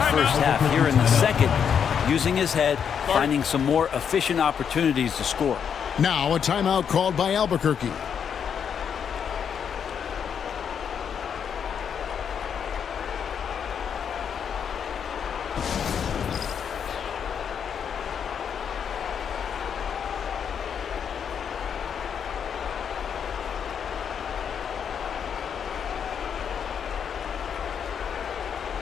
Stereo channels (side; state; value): right; quieter; 7.6 dB